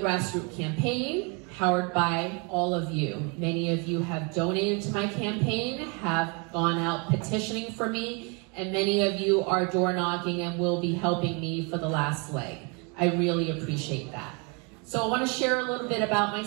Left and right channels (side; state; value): left; quieter; 32.7 dB